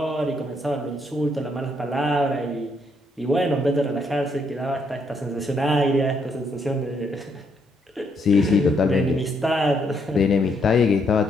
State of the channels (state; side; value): normal; both; correlation 0.73